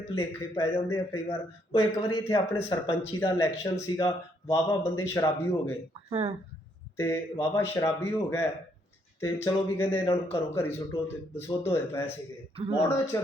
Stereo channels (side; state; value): both; normal; correlation 0.71